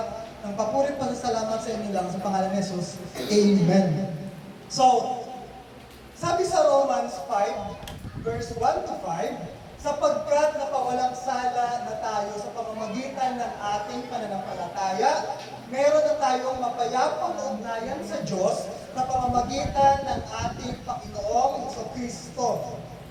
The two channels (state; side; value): identical; both; correlation 1.00